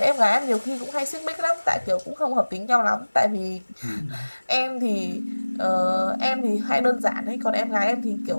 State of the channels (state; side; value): inverted; both; correlation -1.00